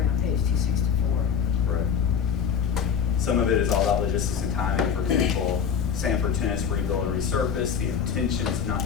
on page 264. Correct. Some of it is all about logistics and timing. For example, Sanford Tennis rebuild and resurface. The intention is not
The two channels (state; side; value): quieter; right; 7.2 dB